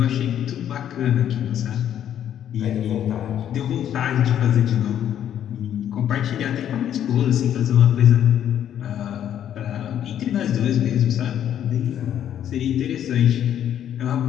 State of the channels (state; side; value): quieter; right; 10.2 dB